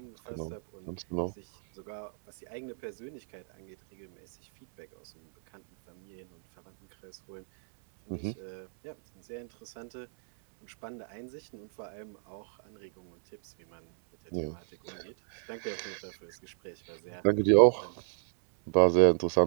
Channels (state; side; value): silent; left; 57 dB below the other